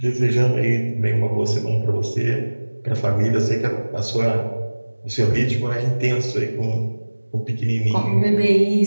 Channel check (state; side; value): inverted; both; correlation -1.00